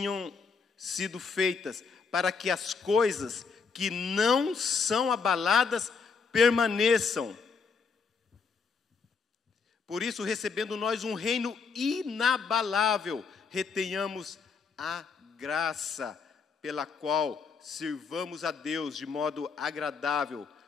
sido feitas, para que as coisas que não são abaladas permaneçam. Por isso, recebendo nós um reino inabalável, retenhamos a graça pela qual sirvamos a Deus de modo agradável,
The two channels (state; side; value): quieter; right; 5.4 dB